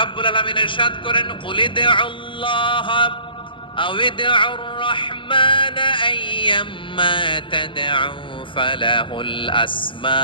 আলামিন ইরশাদ করেন কুলিদুল্লাহ আও ইদউর রাহমান আইয়াম্মা তাদউ ফালাহুল আসমাউল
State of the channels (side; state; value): right; late; 0.24 ms